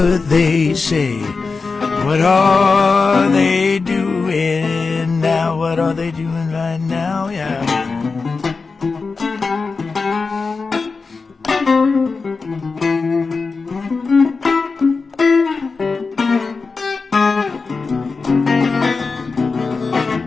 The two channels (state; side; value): quieter; right; 4.4 dB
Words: they say. What are they doing now? What are they doing right now? Yeah.